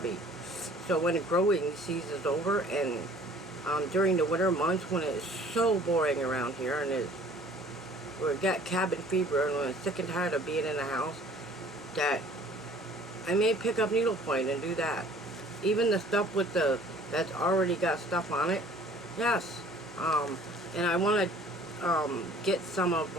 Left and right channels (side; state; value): both; normal; correlation 0.52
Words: So when the growing season is over, and during the winter months when it's so boring around here, and we got cabin fever, and we're sick and tired of being in the house, that I may pick up needlepoint and do that. Even the stuff with that's already got stuff on it. Yes. And I want to get some of